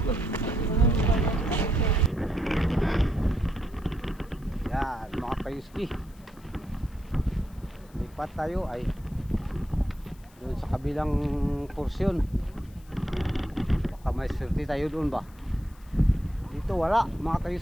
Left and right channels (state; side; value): noise; left; hiss, 28 dB below the sound